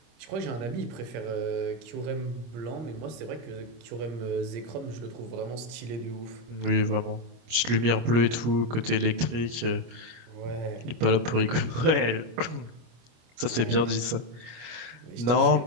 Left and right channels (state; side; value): late; left; 25 ms